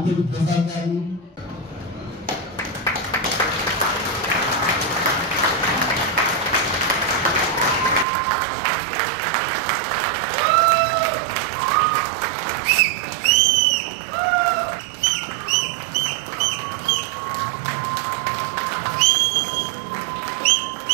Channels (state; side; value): drops out; left; at 8.1 s